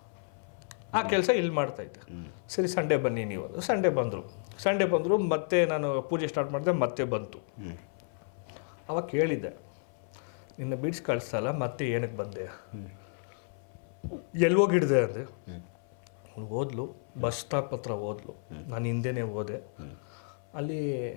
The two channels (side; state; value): right; silent; 57 dB below the other